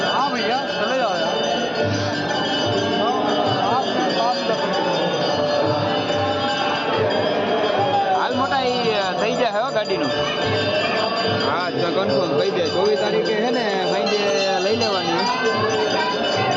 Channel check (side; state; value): both; identical; correlation 1.00